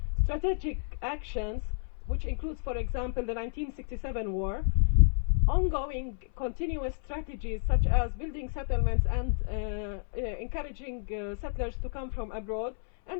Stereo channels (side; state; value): right; silent; 57 dB below the other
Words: Strategic actions, which includes, for example, the 1967 war, ongoing continuous strategies such as building settlements and encouraging settlers to come from abroad,